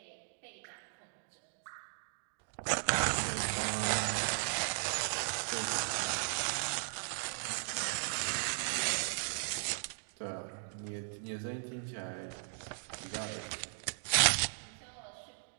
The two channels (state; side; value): silent; left; digital silence